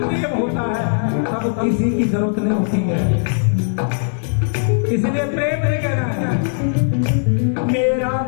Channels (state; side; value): silent; right; 67 dB below the other